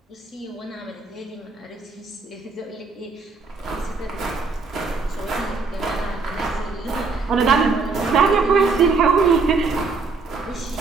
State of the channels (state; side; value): quieter; left; 4.3 dB